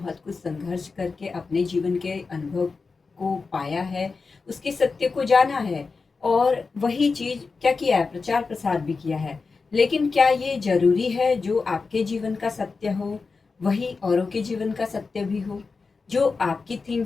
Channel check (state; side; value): quieter; right; 4.5 dB